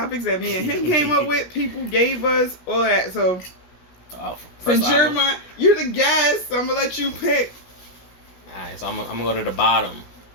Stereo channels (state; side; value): late; right; 17 ms